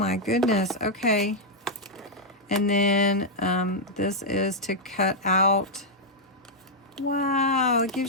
goodness. Okay. And then this is to cut out. Wow, it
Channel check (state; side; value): normal; both; correlation -0.04